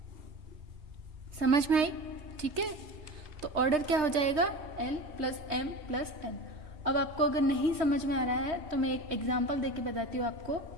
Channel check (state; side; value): late; left; 3.3 ms